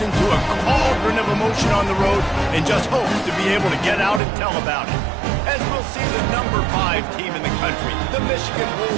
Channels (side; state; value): left; drops out; at 4.2 s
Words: into a cauldron of emotion on the road and just hopes to be able to get out and tell about it. As we'll see the number 5 team in the country, the Michigan